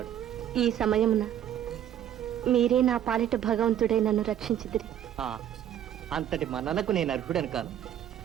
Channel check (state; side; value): quieter; left; 10.6 dB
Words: ఈ సమయమున మీరే నా పాలిట భగవంతుడే నన్ను రక్షించిదిరి. అంతటి మన్ననకు నేను అర్హుడను కాను.